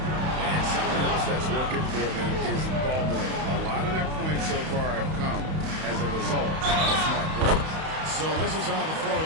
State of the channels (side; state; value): left; late; 31 ms